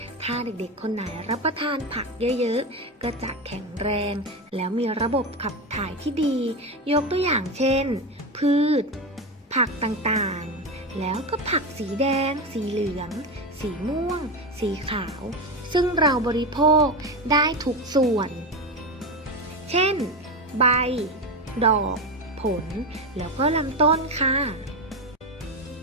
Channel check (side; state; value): both; normal; correlation 0.17